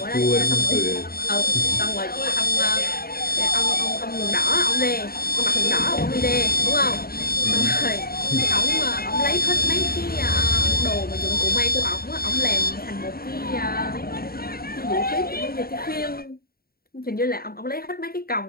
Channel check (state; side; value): late; right; 0.44 ms